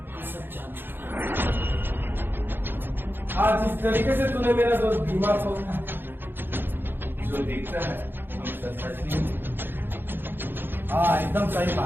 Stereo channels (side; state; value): left; late; 0.10 ms